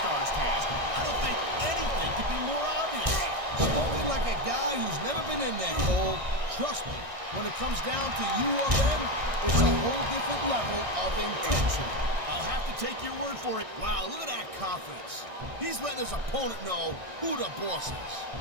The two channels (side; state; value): left; late; 1.6 ms